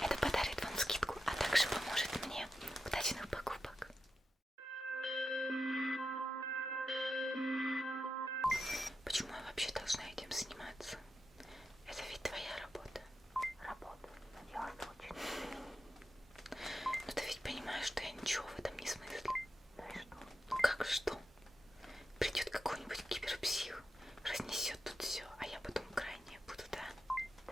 Это подарит вам скидку, а также поможет мне. Удачных покупок! Почему я вообще должна этим заниматься? Это ведь твоя работа. Работа. Надела очень. Но ты ведь понимаешь, что я ничего в этом не смыслю. Ну и что? Ну как что? Придет какой-нибудь киберпсих, разнесет тут все, а я потом крайняя буду, да?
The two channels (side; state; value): both; normal; correlation 0.89